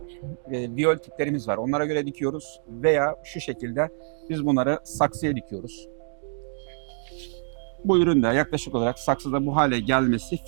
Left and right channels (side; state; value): left; silent; digital silence